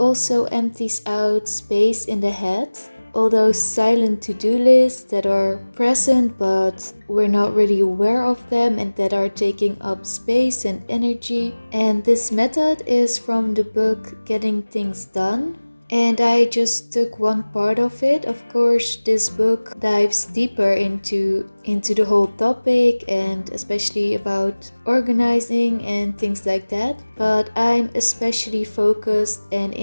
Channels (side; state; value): both; inverted; correlation -1.00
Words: empties out space in the head. All those silent to-do lists that are present but we're not really aware of them and that are taking up space and energy. And this method is from the book Getting Things Done, and I just took one part of it. Of course, this book dives deeper into the whole topic and especially about organizing and things like that. But I'm especially focused and